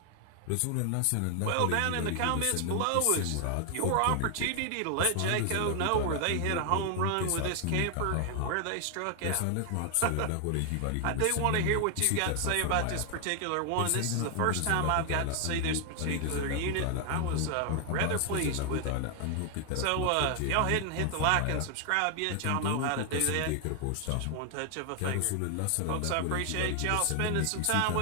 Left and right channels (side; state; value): both; different; correlation 0.00